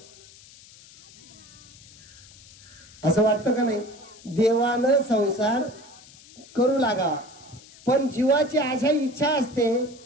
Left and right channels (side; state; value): left; noise; hiss, 22 dB below the sound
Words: असं वाटतं का नाही? देवानं संसार करू लागावा. पण जीवाची अशा इच्छा असते